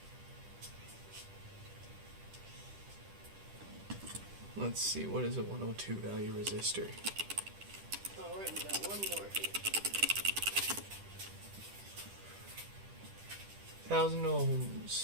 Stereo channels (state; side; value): late; left; 10 ms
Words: Let's see, what is a 102 value resistor? Alright, we got one more here. 1,000